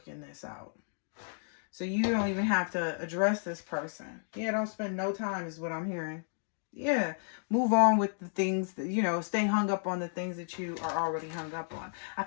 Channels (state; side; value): silent; right; digital silence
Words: this out. So you don't even have to address this person. Yeah, don't spend no time is what I'm hearing. Yeah, move on with the things that, you know, stay hung up on the things that you are already hung up on. I